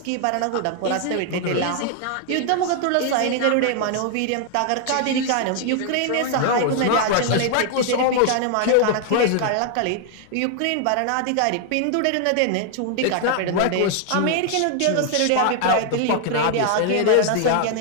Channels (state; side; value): different; both; correlation 0.00